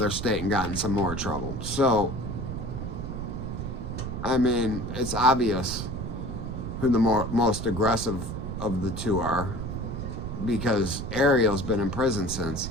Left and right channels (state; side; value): noise; right; rumble, 5 dB below the sound